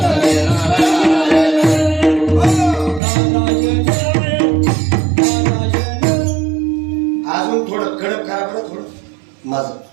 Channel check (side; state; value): left; drops out; at 3.0 s